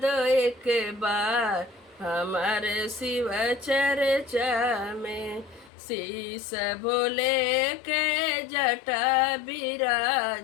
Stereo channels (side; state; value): right; drops out; at 5.7 s